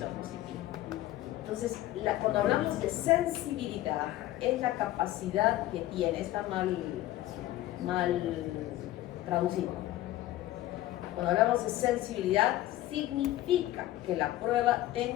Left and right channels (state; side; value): quieter; right; 15.2 dB